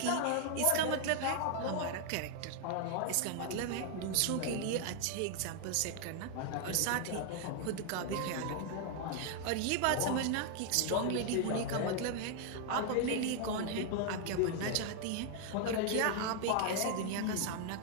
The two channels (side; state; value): both; different; correlation 0.00